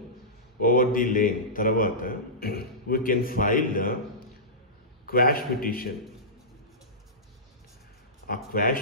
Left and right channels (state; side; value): normal; both; correlation -0.18